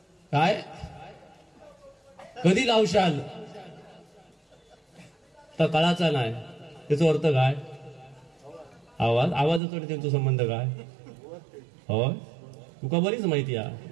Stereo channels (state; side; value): drops out; left; at 9.6 s